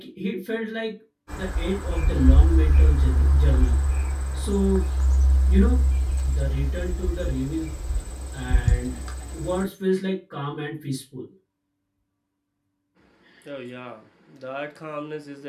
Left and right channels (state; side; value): identical; both; correlation 1.00